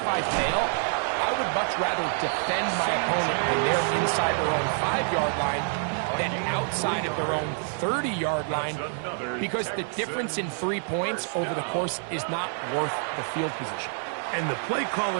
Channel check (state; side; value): silent; left; 56 dB below the other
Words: I fail, I would much rather defend my opponent when they're inside their own 5-yard line than outside of their own 30-yard line, because the difference in 3 points over the course is not worth the field position. And the play